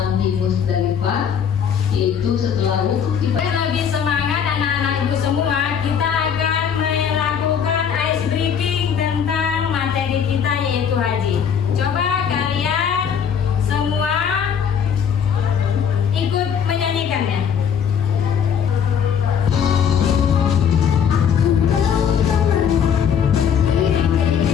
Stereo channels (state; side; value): quieter; right; 7.6 dB